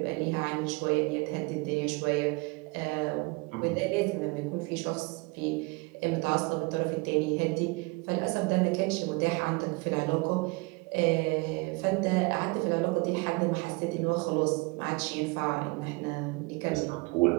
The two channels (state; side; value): quieter; left; 27.4 dB